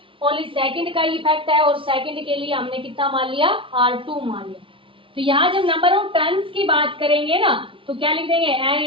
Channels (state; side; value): late; left; 0.25 ms